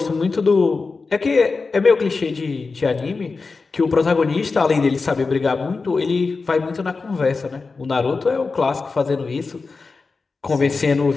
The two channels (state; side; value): quieter; right; 4.2 dB